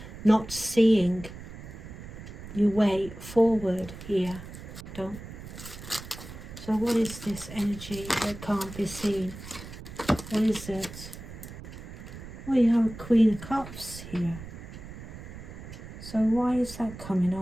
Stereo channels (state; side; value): noise; right; rumble, 13 dB below the sound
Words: not seeing your way forward here. Don't. So what is this energy that can't be seen? What is it? Well, you have a Queen of Cups here. So why is that coming